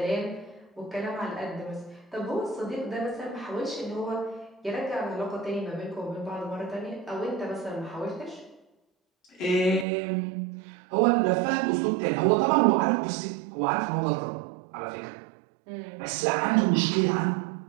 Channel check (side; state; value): left; drops out; at 9.9 s